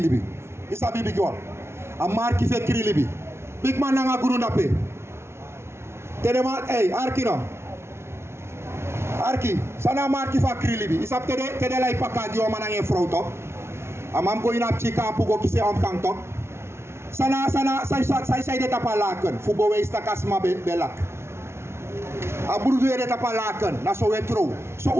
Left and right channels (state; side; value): late; left; 0.12 ms